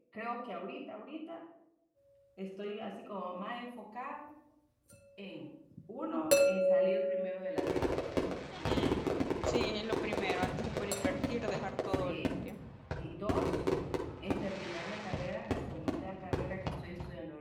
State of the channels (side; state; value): both; identical; correlation 1.00